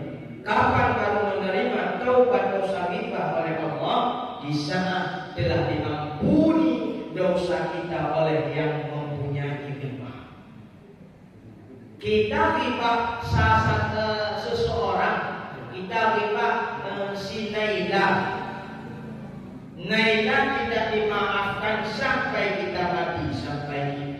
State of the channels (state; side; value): identical; both; correlation 1.00